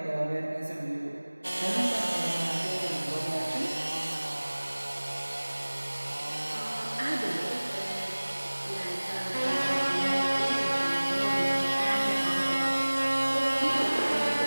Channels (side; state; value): both; inverted; correlation -1.00